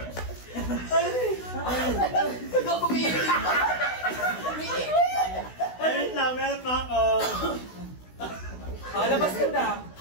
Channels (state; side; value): late; right; 16 ms